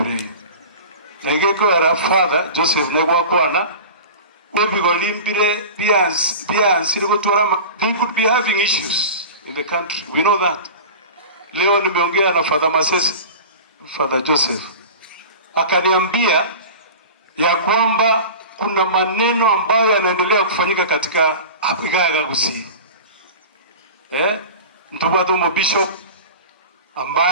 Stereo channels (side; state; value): both; inverted; correlation -0.34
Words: Na igeko era father Joseph negwa kwana they could be having issues in the country. We know that. Leo nimeongea na Father Masese, Father Joseph. Akaniambia ya kwamba kuna maneno ambayo yanaendelea kufanyika katika Igaya Gusii. Mtubatu Bishop